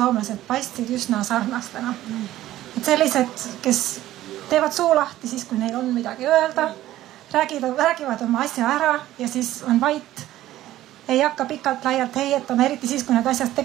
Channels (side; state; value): left; quieter; 14.4 dB